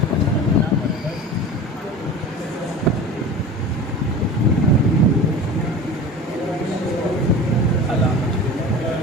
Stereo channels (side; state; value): both; normal; correlation 0.35